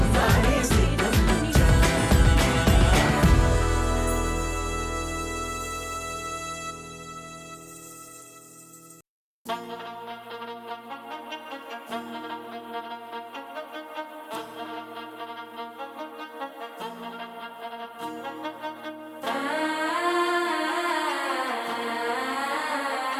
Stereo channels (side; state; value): both; identical; correlation 1.00